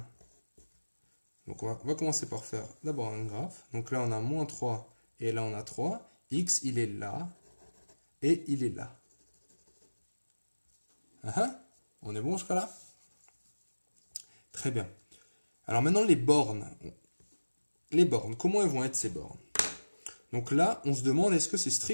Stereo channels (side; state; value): both; inverted; correlation -1.00